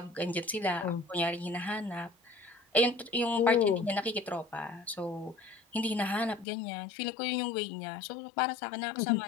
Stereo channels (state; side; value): drops out; right; at 6.5 s